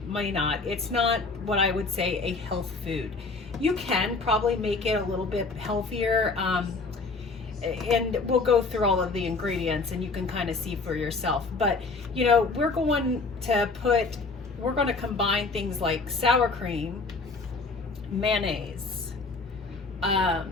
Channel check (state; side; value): quieter; right; 3.9 dB